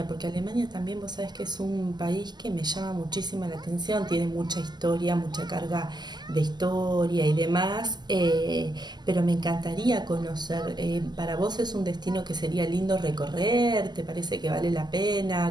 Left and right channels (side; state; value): left; late; 0.21 ms